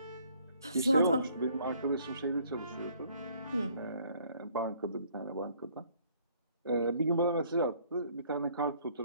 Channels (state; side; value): inverted; both; correlation -0.62